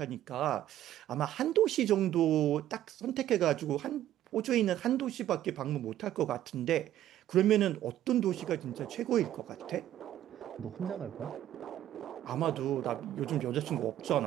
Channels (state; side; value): quieter; left; 12.5 dB